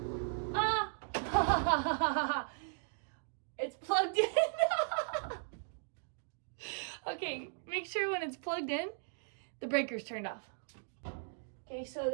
It's plugged in. Okay, make sure when it's plugged in, the breaker's turned off. Okay, so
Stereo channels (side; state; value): left; silent; digital silence